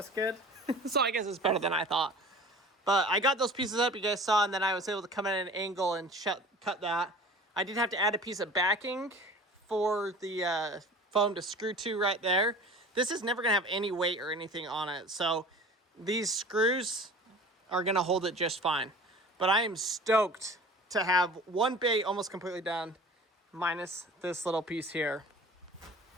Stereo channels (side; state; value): both; normal; correlation 0.41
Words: good. So I guess it's better than I thought. But I got those pieces up, you guys saw, and then I was able to come in at an angle and cut that. I did have to add a piece of backing for the foam to screw to right there. This is never going to have any weight or anything on it, so these screws are going to hold it just fine. But I am stoked to have one bay almost completely done, minus this little piece here.